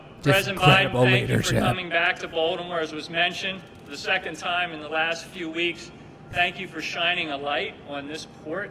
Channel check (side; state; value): both; identical; correlation 1.00